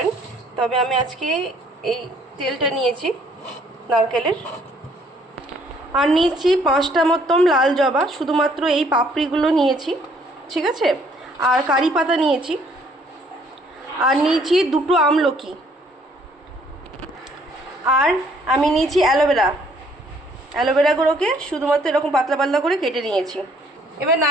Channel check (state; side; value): normal; both; correlation 0.63